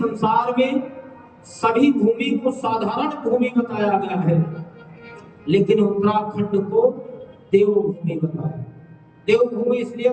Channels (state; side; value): identical; both; correlation 1.00